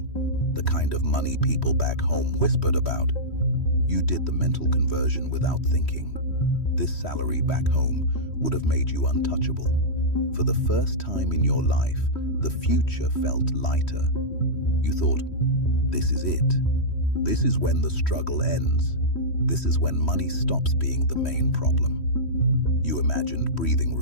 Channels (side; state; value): right; late; 3.1 ms